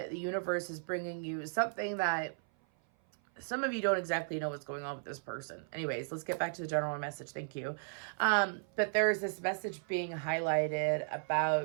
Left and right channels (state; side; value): silent; left; 54 dB below the other